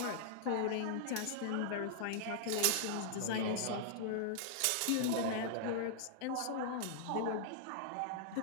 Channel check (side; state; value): both; different; correlation -0.01